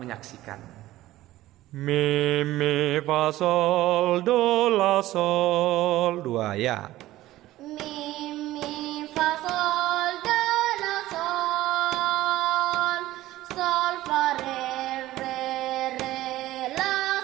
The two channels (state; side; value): quieter; left; 15.8 dB